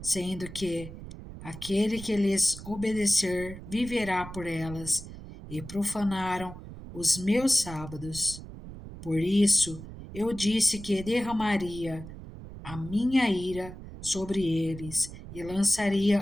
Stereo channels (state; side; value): noise; right; rumble, 13 dB below the sound